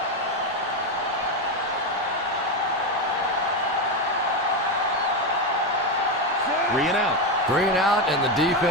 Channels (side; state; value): both; normal; correlation 0.11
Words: Three and out. 3 and out, and the